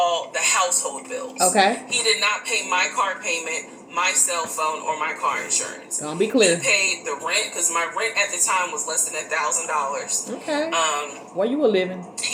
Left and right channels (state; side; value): identical; both; correlation 1.00